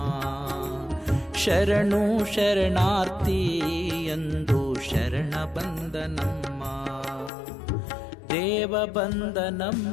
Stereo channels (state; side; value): drops out; right; at 7.3 s